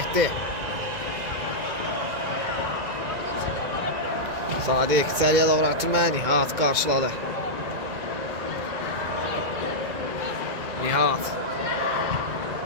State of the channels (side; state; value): left; late; 2.2 ms